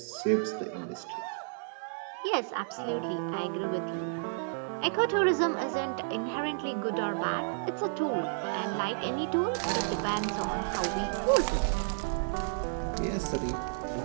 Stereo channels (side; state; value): left; silent; 56 dB below the other